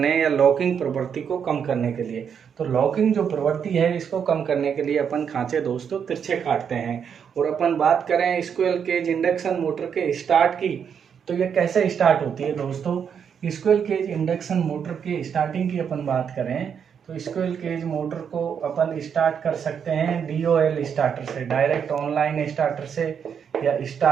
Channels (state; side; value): quieter; left; 7.4 dB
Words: या लॉकिंग प्रवृत्ति को कम करने के लिए। तो लॉकिंग जो प्रवृत्ति है इसको कम करने के लिए अपन खांचे दोस्तों तिरछे काटते हैं। और अपन बात करें स्क्विरल केज इंडक्शन मोटर के स्टार्ट की, तो ये कैसे स्टार्ट होती है दोस्तों। स्क्विरल केज इंडक्शन मोटर के स्टार्टिंग की अपन बात करें तो स्क्विरल केज मोटर को अपन स्टार्ट कर सकते हैं DOL स्टार्टर से, डायरेक्ट ऑनलाइन स्टार्टर से, या